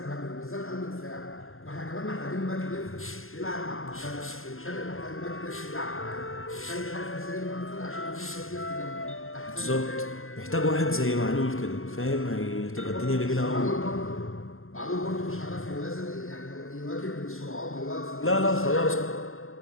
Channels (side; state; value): right; late; 0.61 ms